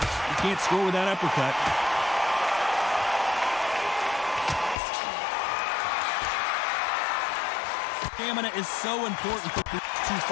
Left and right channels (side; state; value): right; drops out; at 4.8 s